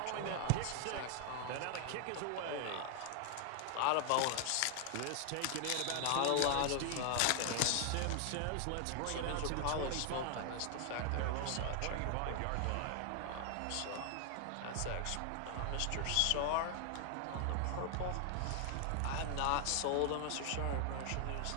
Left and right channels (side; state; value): both; different; correlation 0.00